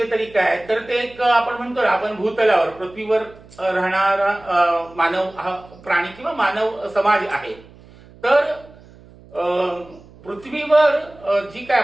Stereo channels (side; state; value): right; noise; hum, 23 dB below the sound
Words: तरी काय, तर ते एक आपण म्हणतो आपण भूतलावर पृथ्वीवर राहणारा मानव हा प्राणी किंवा मानव समाज आहे. तर पृथ्वीवर जी काय